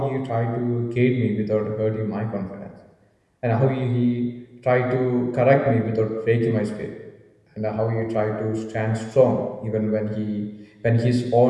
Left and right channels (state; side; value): identical; both; correlation 1.00